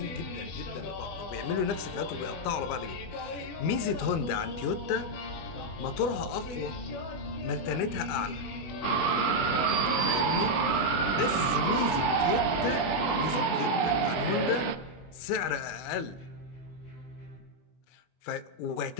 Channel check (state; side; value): late; right; 25 ms